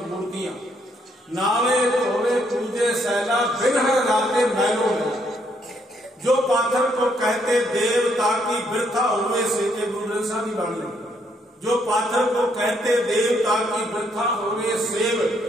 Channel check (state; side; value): normal; both; correlation 0.72